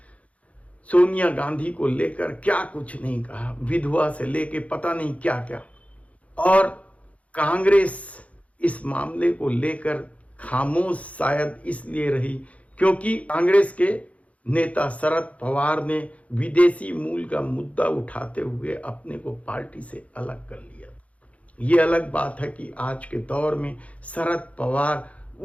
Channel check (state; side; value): late; right; 0.065 ms